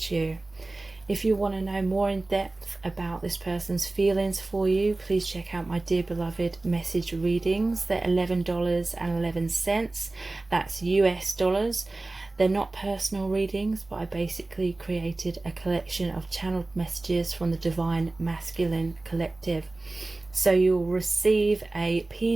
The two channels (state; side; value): quieter; left; 3.0 dB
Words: you? If you want to know more in depth about this person's feelings for you, please check out my dear beloved message readings. They're $11.11. That's US dollars. They're not personal readings, but I basically created a collection of channeled messages from the Divine Masculine Collective. So you'll receive a